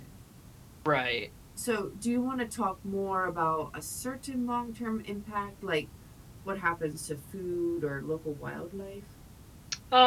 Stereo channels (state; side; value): identical; both; correlation 1.00